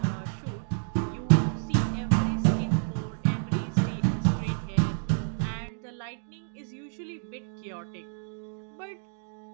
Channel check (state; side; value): silent; left; digital silence